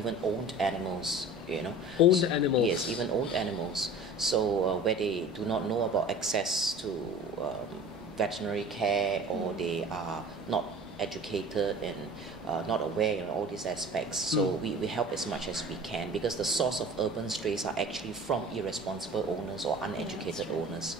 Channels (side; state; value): both; normal; correlation 0.41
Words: owned animals, you know. Owned animals? Yes, even owned animals. So where they do not know about access to veterinary care, or they are not educated and not aware in all these aspects. So we help as much as we can, because the source of urban strays are actually from irresponsible owners or uneducated owners,